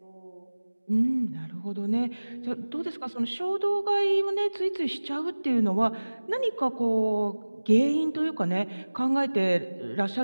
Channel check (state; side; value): inverted; both; correlation -1.00